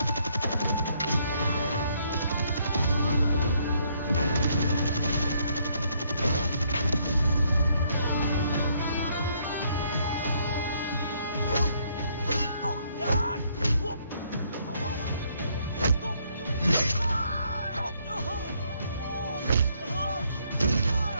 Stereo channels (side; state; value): both; inverted; correlation -0.69